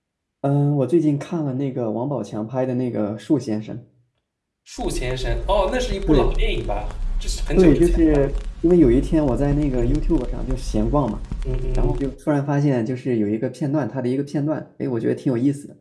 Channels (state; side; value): identical; both; correlation 1.00